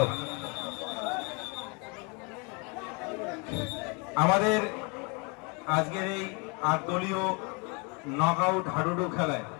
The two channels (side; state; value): right; quieter; 32.3 dB